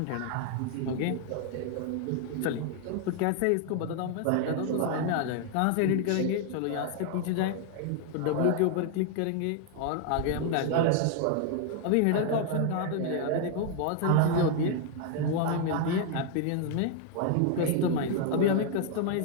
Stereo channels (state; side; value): different; both; correlation 0.00